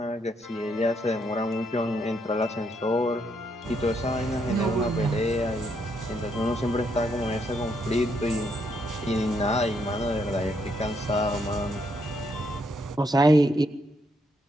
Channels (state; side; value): normal; both; correlation 0.75